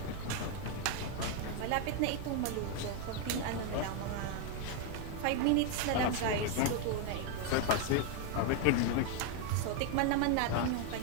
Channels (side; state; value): both; different; correlation 0.01